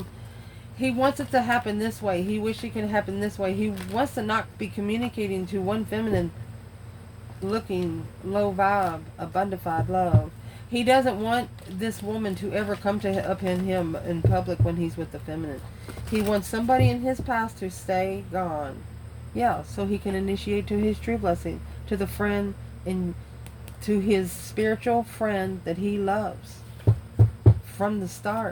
it to happen this way. He wishes it could happen this way. He wants to not be communicating to one feminine looking, low vibe, abundified love. He doesn't want this woman to ever come to up in him in public when he's with the feminine. He wants somebody in his past to stay gone. Yeah, so he can initiate to his true blessing, to the friend, and to his spiritual friend that he loves. From the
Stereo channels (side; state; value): both; identical; correlation 1.00